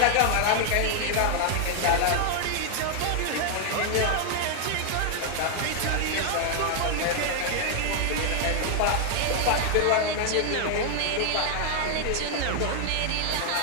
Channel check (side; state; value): both; different; correlation 0.00